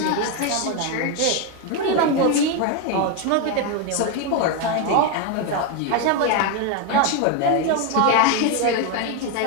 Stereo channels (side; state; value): both; different; correlation 0.02